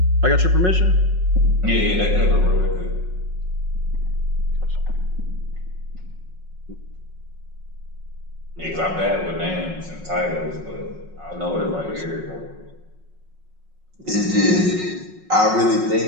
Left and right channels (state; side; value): late; left; 5.5 ms